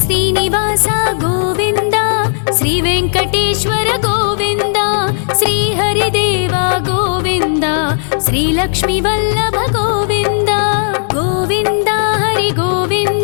श्रीनिवास गोविन्द श्री वेङ्कटेश्वर गोविन्द श्री हरिदेव गोविन्द श्री लक्ष्मीवल्लभ गोविन्द गोविन्द हरि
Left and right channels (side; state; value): right; silent; digital silence